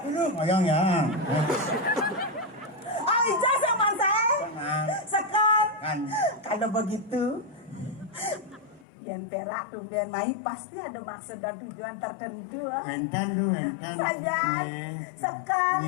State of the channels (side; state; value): right; drops out; at 8.8 s